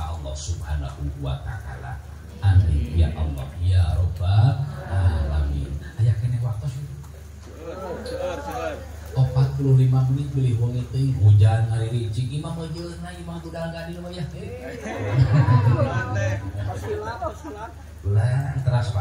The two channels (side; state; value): both; identical; correlation 1.00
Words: Allah Subhanahu wa taala. Amin ya Allah ya rabbal alamin. Aya keneh waktos 45 menit beli wong teh hujan hari ricik imam ajeuna imam budal gadil mah ya. Ulah teras